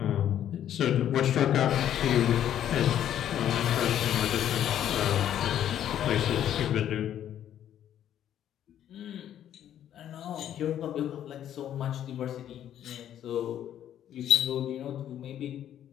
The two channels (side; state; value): right; quieter; 10.7 dB